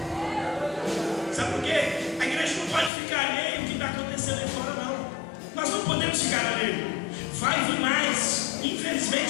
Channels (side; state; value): right; drops out; at 2.9 s